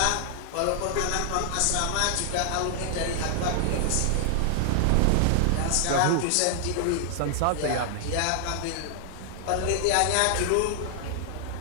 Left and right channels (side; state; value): both; different; correlation 0.00